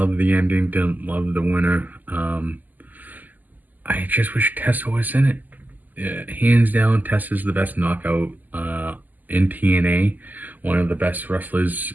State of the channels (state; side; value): late; left; 0.083 ms